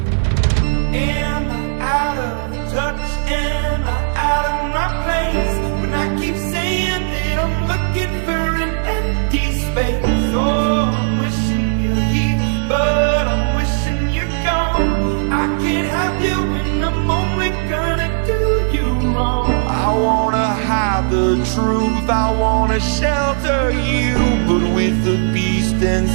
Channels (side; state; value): left; silent; digital silence